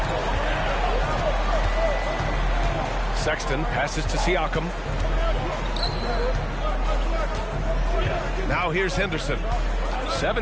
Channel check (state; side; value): identical; both; correlation 1.00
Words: Sexton passes to Siakam. Now here's Henderson.